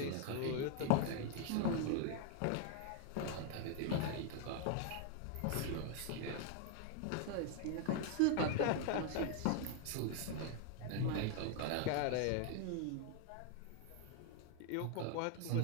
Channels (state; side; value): different; both; correlation 0.01